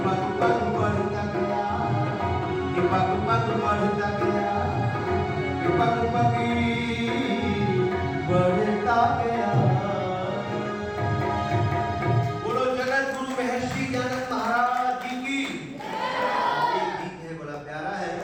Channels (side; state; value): both; identical; correlation 1.00